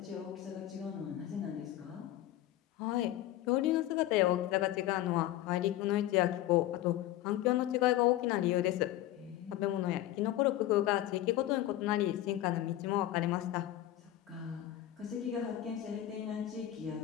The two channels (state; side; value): quieter; right; 13.9 dB